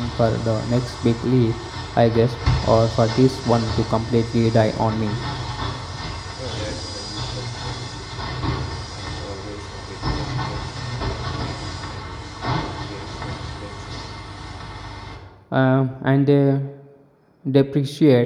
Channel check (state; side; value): identical; both; correlation 1.00